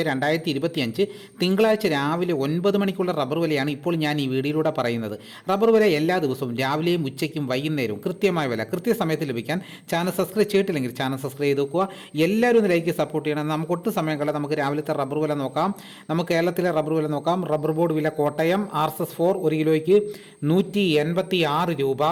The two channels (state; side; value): identical; both; correlation 1.00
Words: തിങ്കളാഴ്ച രാവിലെ 9 മണിക്കുള്ള റബ്ബർ വിലയാണ് ഇപ്പോൾ ഞാൻ ഈ വീഡിയോയിലൂടെ പറയുന്നത്. റബ്ബർ വില എല്ലാ ദിവസവും രാവിലെയും ഉച്ചയ്ക്കും വൈകുന്നേരവും കൃത്യമായ വില കൃത്യസമയത്ത് ലഭിക്കാൻ ചാനൽ സബ്സ്ക്രൈബ് ചെയ്തിട്ടില്ലെങ്കിൽ ചാനൽ സബ്സ്ക്രൈബ് ചെയ്ത് വെക്കുക. എല്ലാവരും ഒന്ന് ലൈക്ക് സപ്പോർട്ട് ചെയ്യണം. നമുക്ക് ഒട്ടും സമയം കളയാതെ നമുക്ക് രാവിലത്തെ റബ്ബർ വില നോക്കാം. നമുക്ക് കേരളത്തിലെ റബ്ബർ വില നോക്കാം. റബ്ബർ ബോർഡ് വില കോട്ടയം RSS 4 1 കിലോയ്ക്ക് 186 രൂപ.